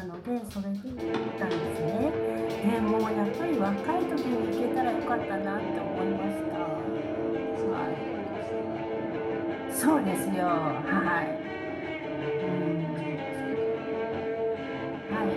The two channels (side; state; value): both; identical; correlation 1.00